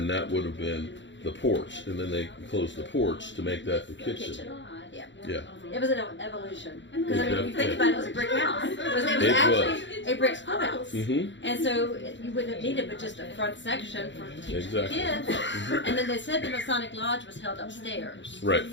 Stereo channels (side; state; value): right; late; 0.53 ms